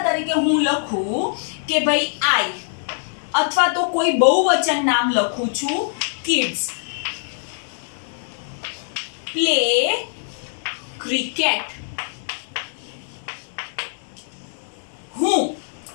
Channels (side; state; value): right; silent; digital silence